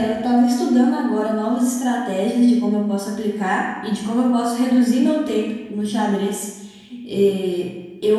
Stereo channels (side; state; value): both; identical; correlation 1.00